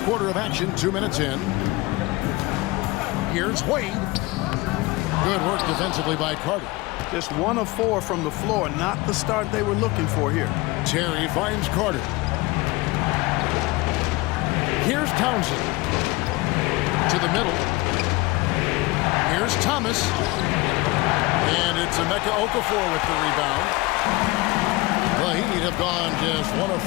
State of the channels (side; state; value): right; quieter; 22.2 dB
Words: quarter of action, 2 minutes in. Here's Wade. Good work defensively by Carter. Just 1 of 4 from the floor, not the start they were looking for here. Terry finds Carter. Here's Townsend. To the middle. Here's Thomas. And it's Emeka Okafor with the rebound. The Heat have gone just 1 of